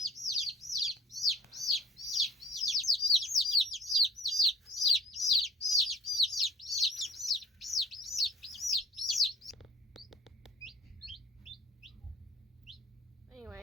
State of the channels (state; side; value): normal; both; correlation 0.49